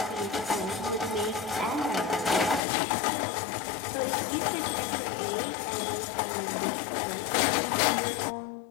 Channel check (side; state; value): right; drops out; at 2.6 s